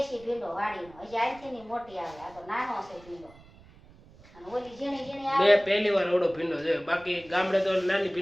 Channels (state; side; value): noise; right; rumble, 23 dB below the sound